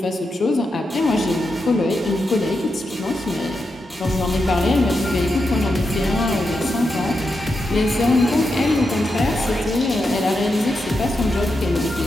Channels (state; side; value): normal; both; correlation 0.86